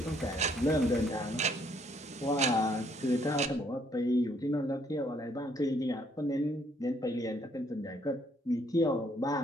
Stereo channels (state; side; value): normal; both; correlation 0.67